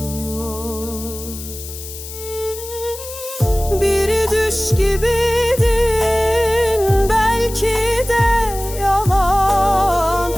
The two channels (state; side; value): noise; left; hiss, 12 dB below the sound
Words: Bir düş gibiydin, belki de yalan,